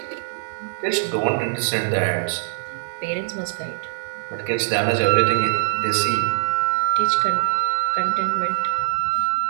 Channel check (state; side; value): silent; left; digital silence